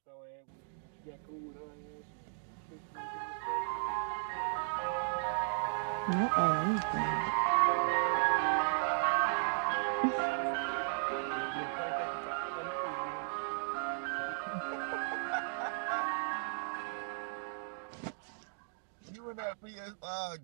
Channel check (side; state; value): left; silent; digital silence